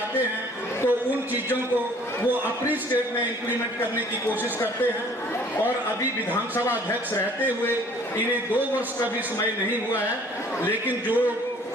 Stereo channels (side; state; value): both; normal; correlation 0.55